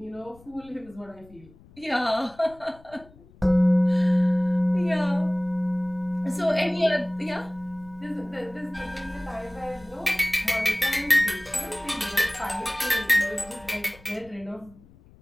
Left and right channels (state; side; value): noise; left; rumble, 25 dB below the sound